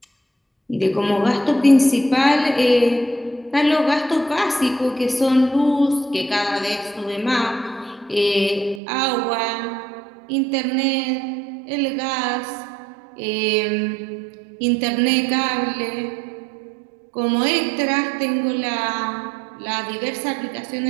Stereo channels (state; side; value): drops out; left; at 8.8 s